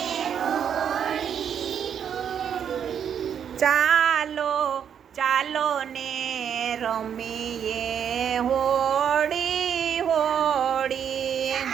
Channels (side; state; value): left; quieter; 8.3 dB